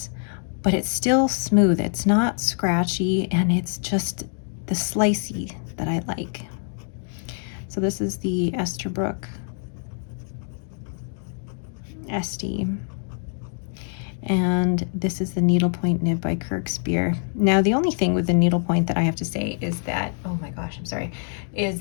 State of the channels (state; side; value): silent; right; 62 dB below the other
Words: but it's still smooth. It's not scratchy, and it's just the slicey that I like. So this is the Esterbrook SD, and this is the needlepoint nib by Kirk Spear. Now, the only thing with the needlepoint that I have to say is that, oh my gosh, I'm sorry, is